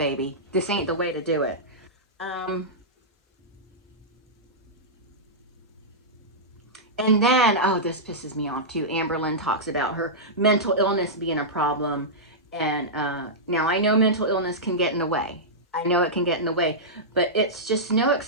This ain't the way to do it. And then, oh, this pisses me off too. Amberlynn talks about her mental illness being a problem. And now I know mental illness can get in the way. I know it can get in the way, but it's just no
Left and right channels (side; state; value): both; normal; correlation -0.12